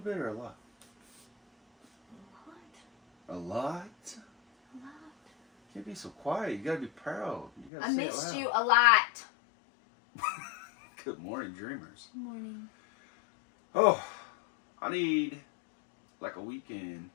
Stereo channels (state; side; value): drops out; right; at 7.7 s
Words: or a lot? A lot. A lot? A lot. Can't be so quiet. You gotta be proud. You gotta I say it missed loud. you a lot. Good morning, dreamers. Good morning. Oh, I need like a weekend